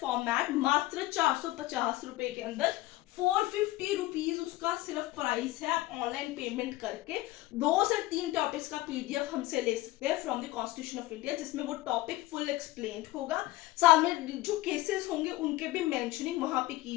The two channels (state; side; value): quieter; right; 17.8 dB